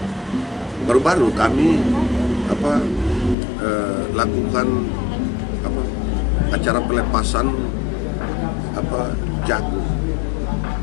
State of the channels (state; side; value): drops out; right; at 3.4 s